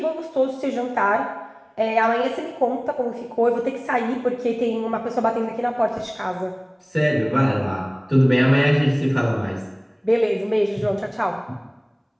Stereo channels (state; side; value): identical; both; correlation 1.00